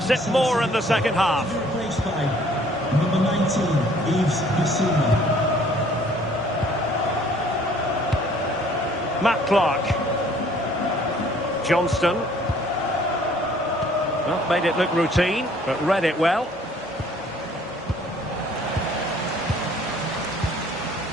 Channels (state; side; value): normal; both; correlation 0.57